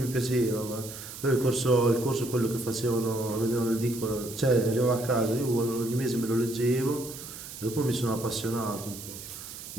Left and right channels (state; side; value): noise; right; hiss, 12 dB below the sound